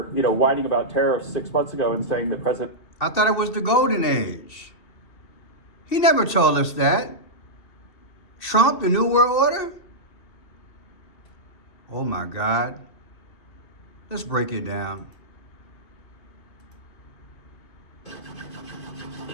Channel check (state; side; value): late; right; 2.5 ms